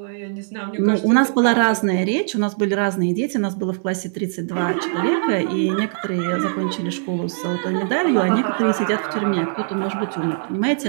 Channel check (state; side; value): silent; left; digital silence